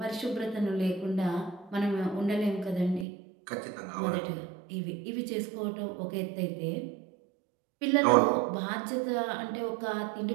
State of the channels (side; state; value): left; drops out; at 3.1 s